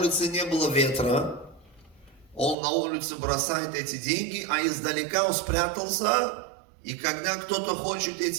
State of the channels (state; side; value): drops out; left; at 2.6 s